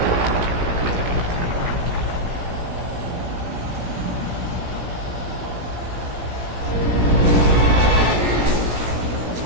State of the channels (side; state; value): left; late; 17 ms